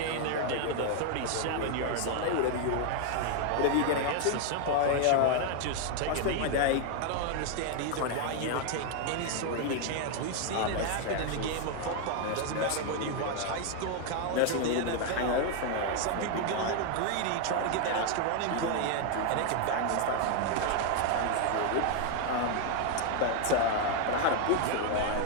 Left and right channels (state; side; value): different; both; correlation 0.00